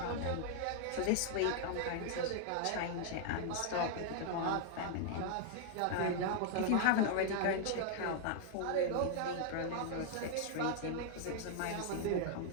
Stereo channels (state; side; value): different; both; correlation -0.01